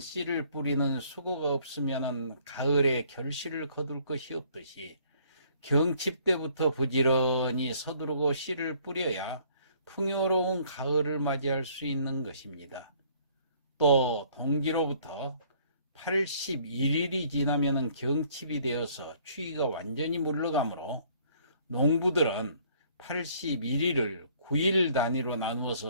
뿌리는 수고가 없으면 가을에 결실을 거둘 것이 없듯이, 경칩 때부터 부지런히 서두르고 씨를 뿌려야 풍요로운 가을을 맞이할 수 있는 것입니다. 또 동지로부터 81일이 지나면 경칩이 되어서 추위가 완전히 물러가므로 농부들은 81일을 9일 단위로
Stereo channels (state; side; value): inverted; both; correlation -0.60